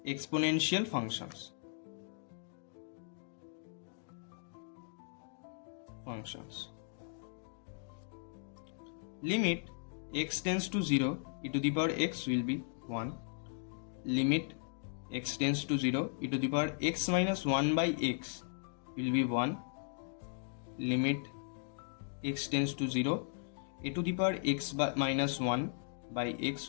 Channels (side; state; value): right; silent; digital silence